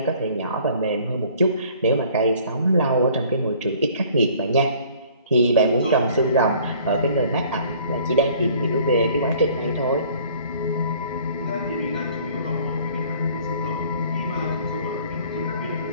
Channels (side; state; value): both; inverted; correlation -0.54